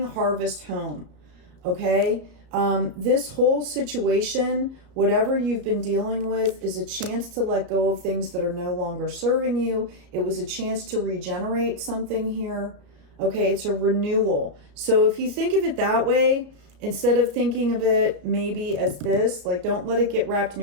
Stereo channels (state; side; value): late; left; 34 ms